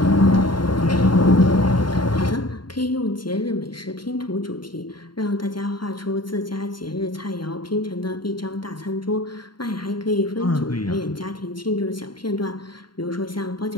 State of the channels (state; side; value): late; right; 0.72 ms